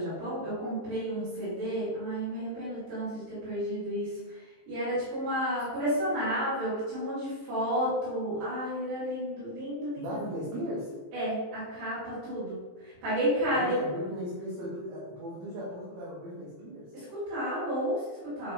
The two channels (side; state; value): left; late; 18 ms